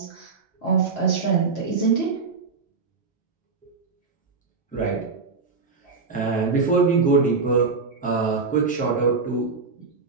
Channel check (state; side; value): quieter; left; 4.6 dB